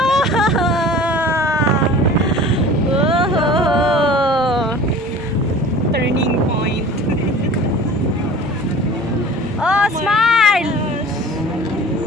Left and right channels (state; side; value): normal; both; correlation 0.42